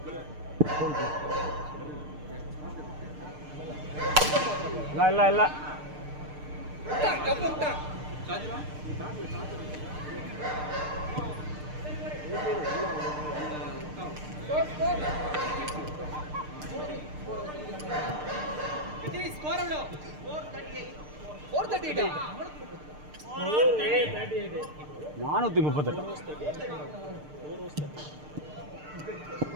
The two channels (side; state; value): left; late; 6.6 ms